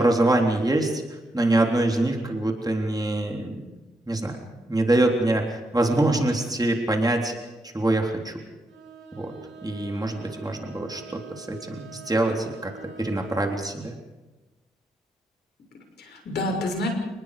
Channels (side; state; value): both; normal; correlation 0.81